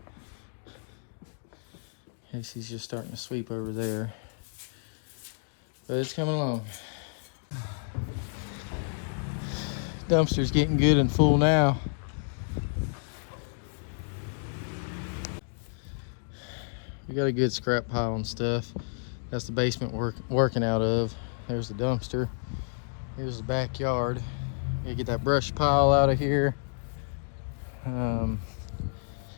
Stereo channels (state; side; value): silent; right; digital silence